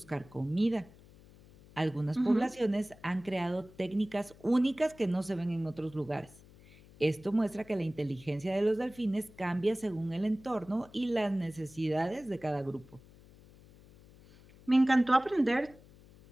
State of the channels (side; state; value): left; noise; hum, 23 dB below the sound